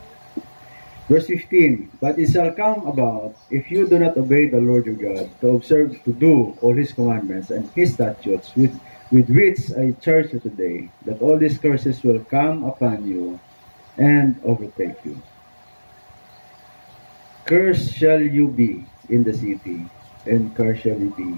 Verse 15, but it shall come about, if you do not obey the Lord your God, to observe to do all his commandments and his statutes with which I charge you today, that all these curses will come upon you and overtake you. Cursed shall you be in the city, and cursed shall you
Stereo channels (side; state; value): both; inverted; correlation -1.00